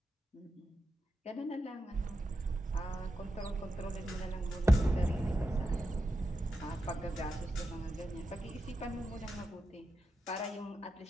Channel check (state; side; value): normal; both; correlation 0.88